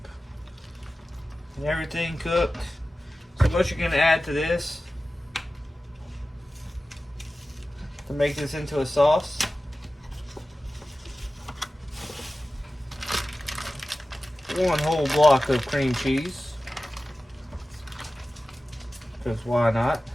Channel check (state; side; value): normal; both; correlation 0.95